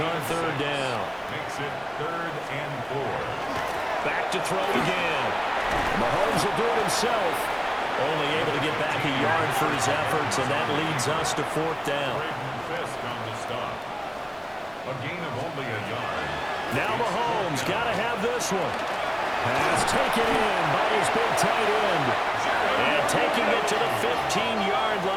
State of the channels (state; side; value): identical; both; correlation 1.00